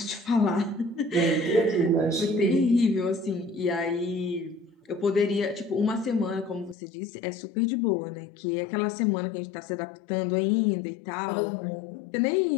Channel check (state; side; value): drops out; right; at 6.8 s